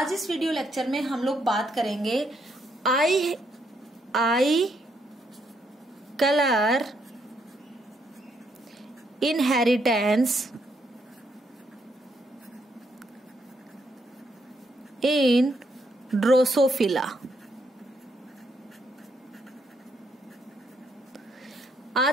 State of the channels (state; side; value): normal; both; correlation 0.75